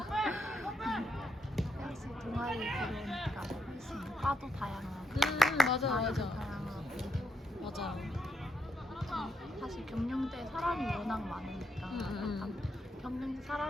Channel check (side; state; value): both; normal; correlation 0.81